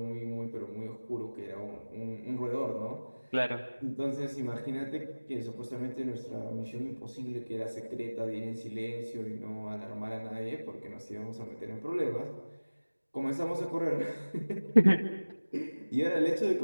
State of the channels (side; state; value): both; inverted; correlation -1.00